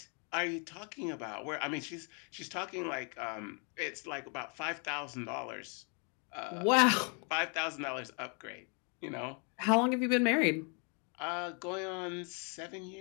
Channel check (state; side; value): quieter; right; 36.7 dB